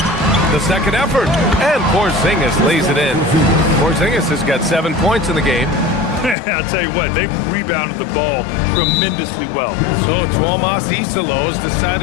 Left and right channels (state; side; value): drops out; right; at 6.4 s